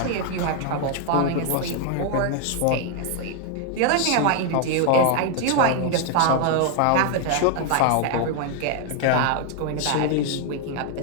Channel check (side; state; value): both; different; correlation 0.00